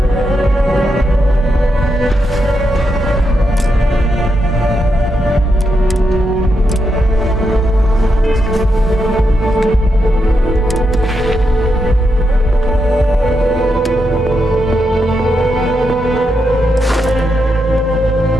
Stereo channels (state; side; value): normal; both; correlation 0.83